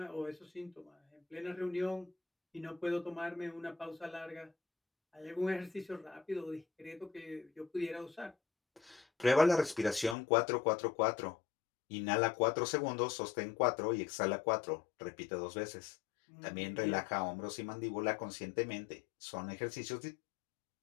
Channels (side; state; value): right; drops out; at 10.2 s